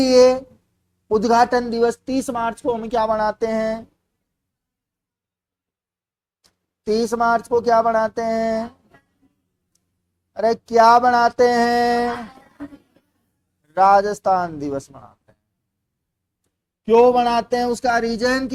उद्घाटन दिवस 30 मार्च को हम क्या बनाते हैं? 30 मार्च को क्या बनाते हैं? अरे क्या बनाते हैं? राजस्थान दिवस मनाते हैं। क्यों बनाते हैं? उसका रीजन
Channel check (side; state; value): both; identical; correlation 1.00